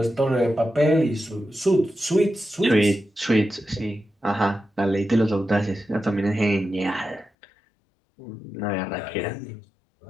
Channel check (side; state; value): right; drops out; at 7.3 s